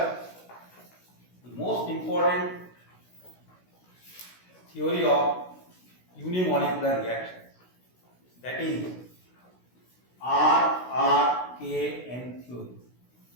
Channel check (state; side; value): late; right; 16 ms